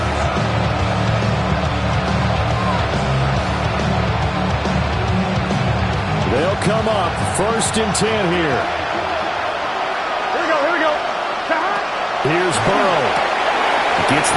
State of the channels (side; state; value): both; identical; correlation 1.00